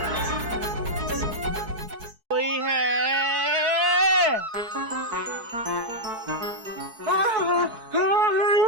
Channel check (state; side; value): late; left; 4.6 ms